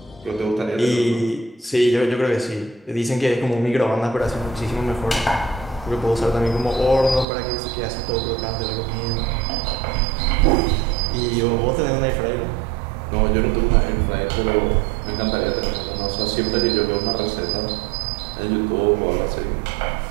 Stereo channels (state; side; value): drops out; left; at 7.2 s